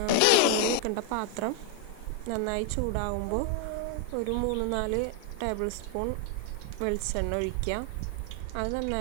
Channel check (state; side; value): different; both; correlation 0.00